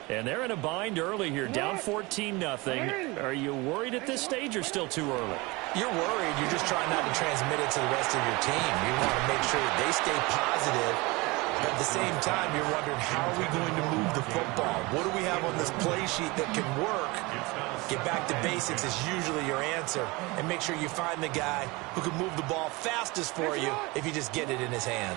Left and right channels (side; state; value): left; quieter; 24.3 dB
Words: And they're in a bind early here, down 14-0. Are you worried at this stage or still too early? You're worried. You're just trying not to transmit it to the rest of your team. You want to make sure that they stay positive. At the same time, you're wondering, how are we going to move the football? What do we have on this play sheet that can work? Get back to basics is usually your answer. And make sure you find the guy who can move the ball fastest for you if you just get it in his